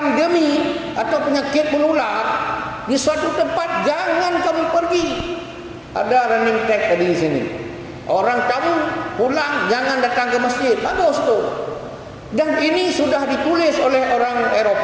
atau penyakit menular di suatu tempat, jangan kamu pergi. Ada running tag tadi di sini. Orang kamu pulang, jangan datang ke masjid. Bagus tu. Dan ini sudah ditulis oleh orang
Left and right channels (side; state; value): both; identical; correlation 1.00